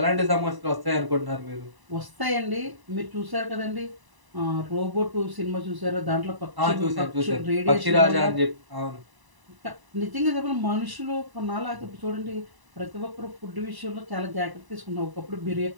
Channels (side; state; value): left; late; 1.0 ms